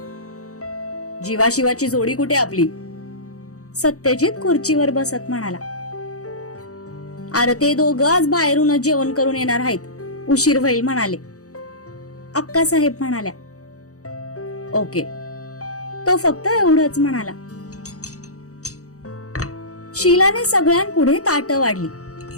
जीवाशिवाची जोडी कुठे आपली? सत्यजित खुर्चीवर बसत म्हणाला. अरे ते दोघं आज बाहेरूनच जेवण करून येणार आहेत, उशीर होईल म्हणाले. अक्कासाहेब म्हणाल्या. ओके, तो फक्त एवढंच म्हणाला. शीलाने सगळ्यांपुढे ताटं वाढली.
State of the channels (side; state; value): right; late; 0.66 ms